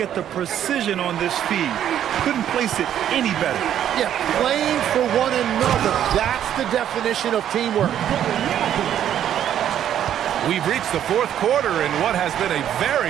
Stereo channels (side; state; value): left; quieter; 10.3 dB